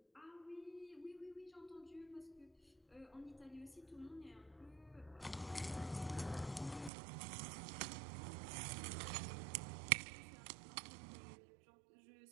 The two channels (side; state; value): left; drops out; at 6.9 s